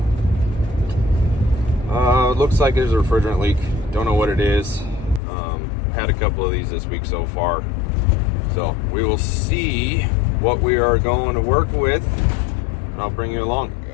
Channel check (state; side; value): drops out; right; at 5.2 s